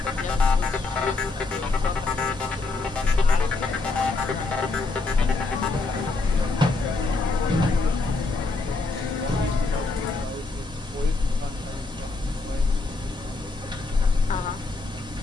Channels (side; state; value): right; quieter; 3.6 dB